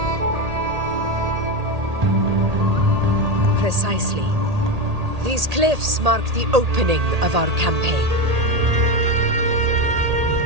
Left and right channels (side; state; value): left; late; 1.8 ms